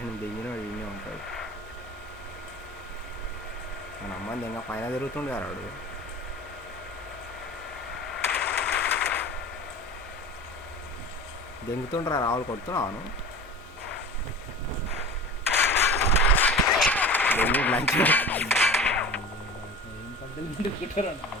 దిగిన ఈయనే ఉంటాడు. మన అమ్మని ఇంకా పైన తిరుగుతుండే వాడు. దెంగుతుండ్రా రావులు కొడుతున్నాను దెంగి లంచ్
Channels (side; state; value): both; normal; correlation 0.36